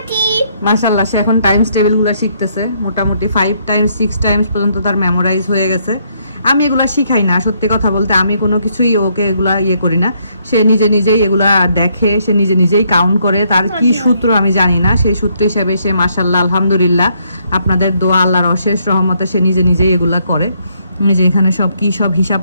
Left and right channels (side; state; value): both; inverted; correlation -0.72